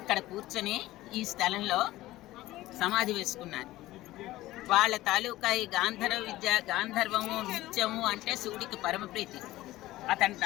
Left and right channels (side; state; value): right; quieter; 16.7 dB